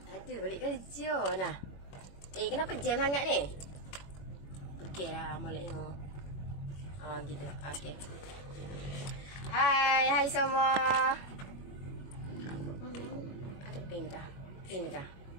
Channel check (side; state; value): right; late; 21 ms